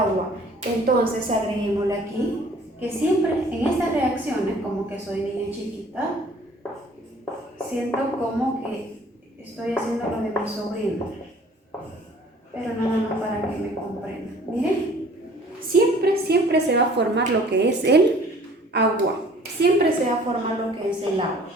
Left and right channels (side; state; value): both; normal; correlation 0.53